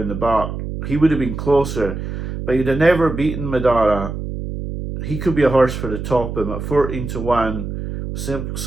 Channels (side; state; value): right; noise; hum, 6 dB below the sound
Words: the back. He would have been closer, but he'd have never beaten Madara. He could be a horse for the top him at 14-1.